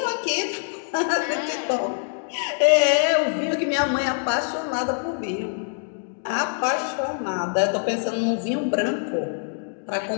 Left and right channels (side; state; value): right; silent; digital silence